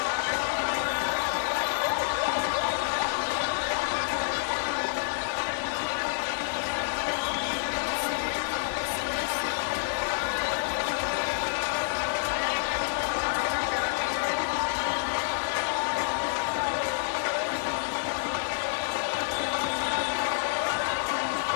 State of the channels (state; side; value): silent; right; digital silence